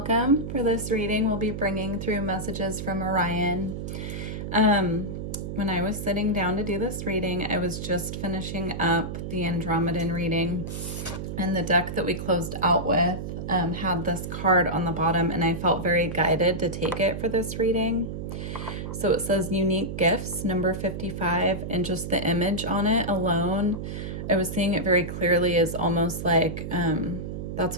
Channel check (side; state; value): right; noise; hum, 6 dB below the sound